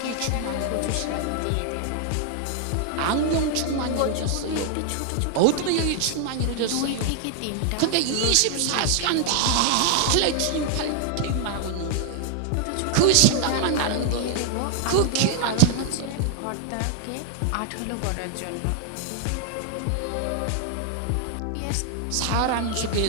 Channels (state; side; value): different; both; correlation 0.00